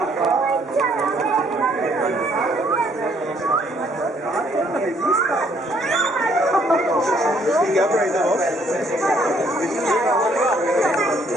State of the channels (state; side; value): normal; both; correlation 0.65